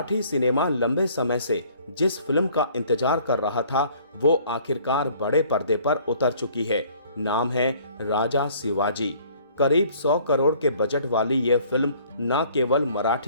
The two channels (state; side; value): inverted; both; correlation -0.57